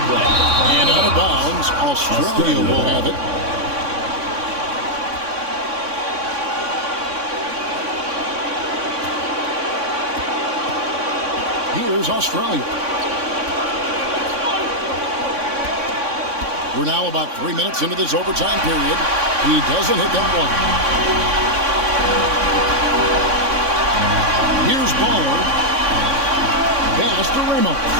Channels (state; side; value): late; left; 3.6 ms